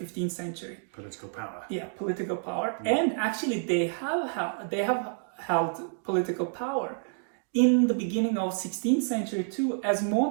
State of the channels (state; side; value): silent; left; digital silence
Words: century. Political power. Yeah, political power. And actually they have held political power in the beginning of 16th century too as